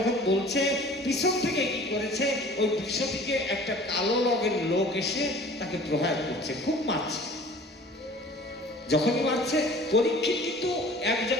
বলছে, পিছন থেকে কি করেছে, ওই বিশ্বটিকে একটা কালো রঙের লোক এসে তাকে প্রহার করছে, খুব মারছে। যখনই মারছে, পরীক্ষিত কিন্তু এক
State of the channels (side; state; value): both; normal; correlation 0.47